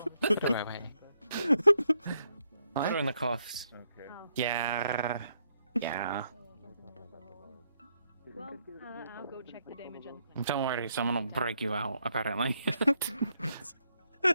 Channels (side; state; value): both; inverted; correlation -0.76